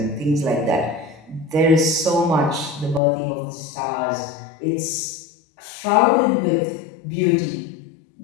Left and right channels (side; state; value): right; drops out; at 3.0 s